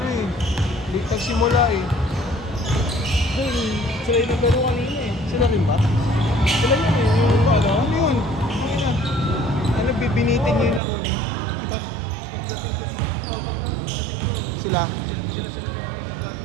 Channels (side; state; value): left; drops out; at 10.8 s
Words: eh. Late nagsimula eh. Sila yung naglaro kanina eh. Sila rin ba? Sila yun eh. Yung ano? Ano yun? Ano, bibinitin niyo yung laro niyo? Pagdating ko, sila